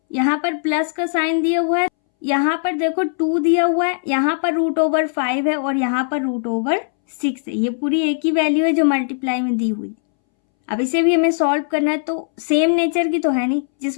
यहाँ पर प्लस का साइन दिया हुआ है, यहाँ पर देखो 2 दिया हुआ है, यहाँ पर √5 है और यहाँ पर √6 है। ये पूरी एक ही वैल्यू है जो मल्टीप्लाई में दी हुई। अब इसे भी हमें सॉल्व करना है, तो सेम नेचर की तो है नहीं।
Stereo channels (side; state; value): right; silent; 64 dB below the other